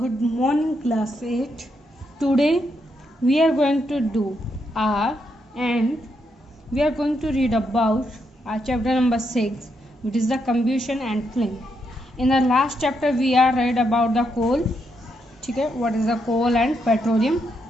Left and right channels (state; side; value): normal; both; correlation 0.80